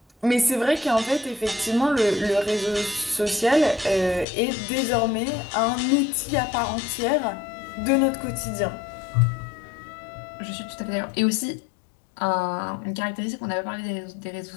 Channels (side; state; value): right; drops out; at 4.2 s